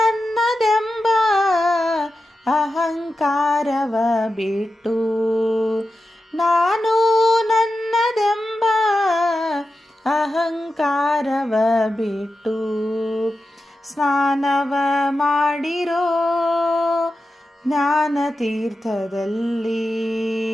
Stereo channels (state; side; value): normal; both; correlation 0.91